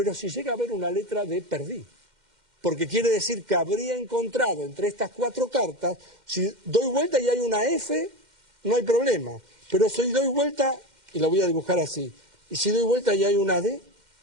si llega a haber una letra D, perdí. Porque quiere decir que habría encontrado entre estas 4 cartas, si doy vuelta y hay una F, no hay problema. Pero si doy vuelta, y lo voy a dibujar así, y si doy vuelta y hay una D,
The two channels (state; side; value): late; left; 2.1 ms